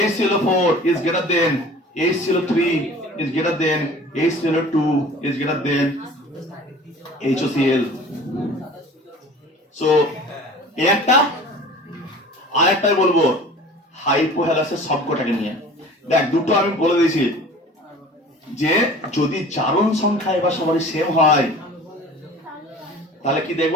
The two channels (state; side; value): normal; both; correlation 0.43